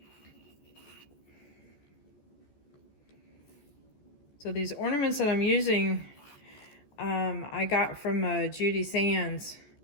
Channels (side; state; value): right; late; 14 ms